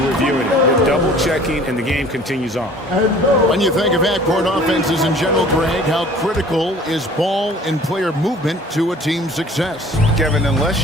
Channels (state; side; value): normal; both; correlation 0.49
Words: reviewing it. They're double-checking and the game continues on. When you think of half-court offenses in general, Greg, how critical is ball and player movement to a team's success? Kevin, unless